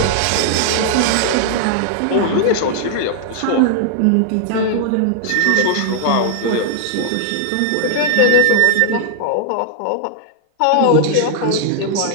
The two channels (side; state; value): both; different; correlation -0.01